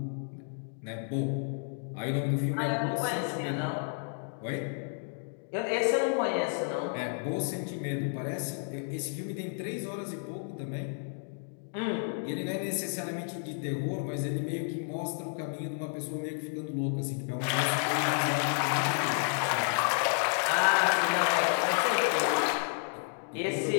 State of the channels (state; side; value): silent; right; 56 dB below the other